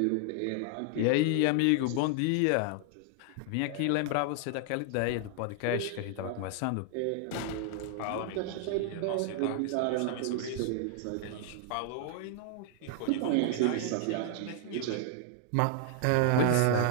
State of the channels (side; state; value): both; different; correlation 0.00